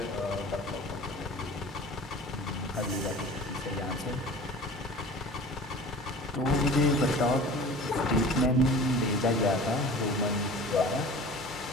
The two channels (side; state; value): both; normal; correlation 0.41